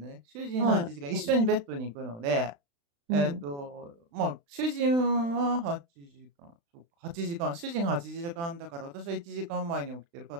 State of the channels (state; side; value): late; left; 35 ms